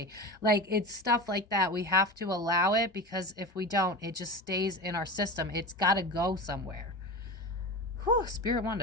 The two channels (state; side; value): normal; both; correlation 0.27